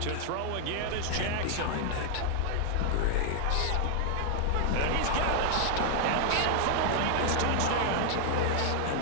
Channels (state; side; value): different; both; correlation 0.00